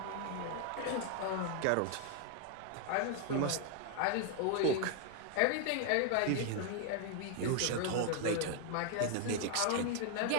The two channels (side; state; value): both; different; correlation 0.00